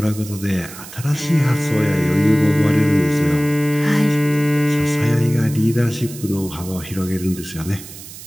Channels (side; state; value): right; noise; hiss, 15 dB below the sound